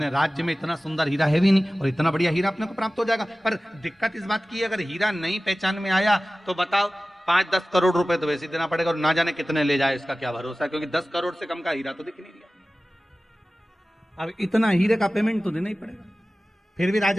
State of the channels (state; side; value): normal; both; correlation 0.97